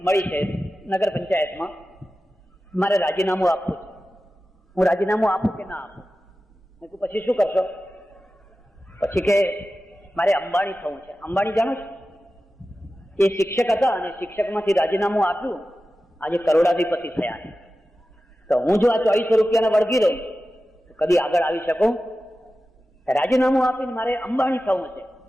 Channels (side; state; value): both; normal; correlation 0.94